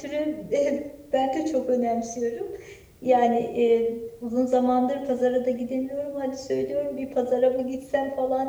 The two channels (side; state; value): both; identical; correlation 1.00